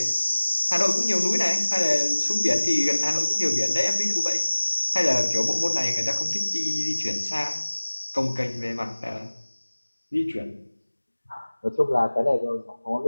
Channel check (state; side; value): inverted; both; correlation -1.00